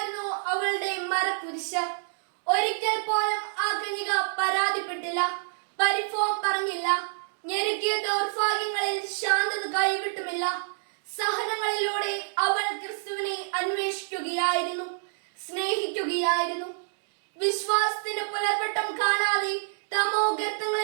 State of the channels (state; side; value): silent; left; digital silence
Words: അവളുടെ മരക്കുരിശ്. ഒരിക്കൽ പോലും ആ കന്യക പരാതിപ്പെട്ടില്ല, പരിഭവം പറഞ്ഞില്ല. ഞെരുക്കിയ ദൗർഭാഗ്യങ്ങളിൽ ശാന്തത കൈവിട്ടുമില്ല. സഹനങ്ങളിലൂടെ അവൾ ക്രിസ്തുവിനെ അന്വേഷിക്കുകയായിരുന്നു, സ്നേഹിക്കുകയായിരുന്നു. വിശ്വാസത്തിന്റെ പുലർവട്ടം കാണാതെ തമോ